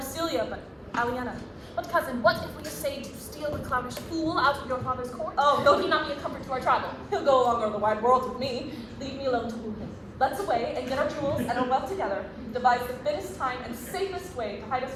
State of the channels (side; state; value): both; identical; correlation 1.00